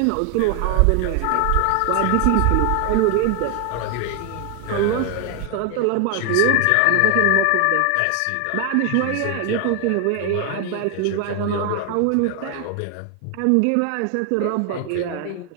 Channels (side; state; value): both; different; correlation 0.01